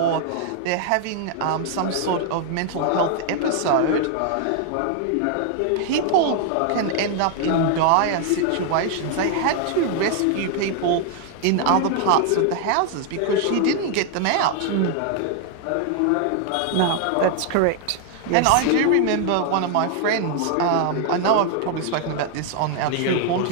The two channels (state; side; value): different; both; correlation 0.00